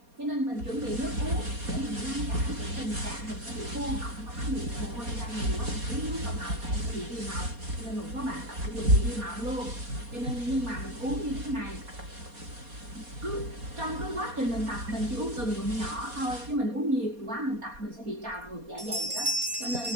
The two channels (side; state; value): left; late; 4.2 ms